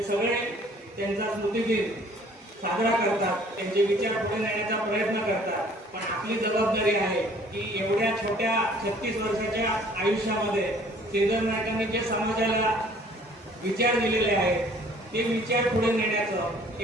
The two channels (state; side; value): normal; both; correlation 0.55